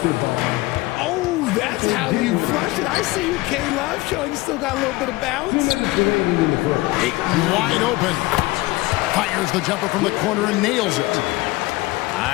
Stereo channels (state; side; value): quieter; right; 20.8 dB